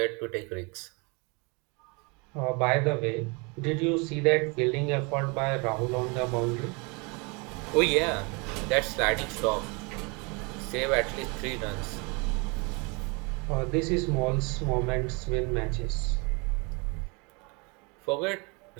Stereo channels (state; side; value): quieter; left; 30.5 dB